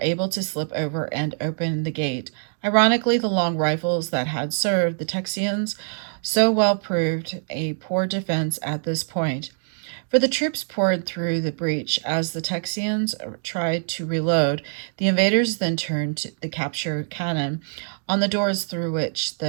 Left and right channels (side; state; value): left; silent; digital silence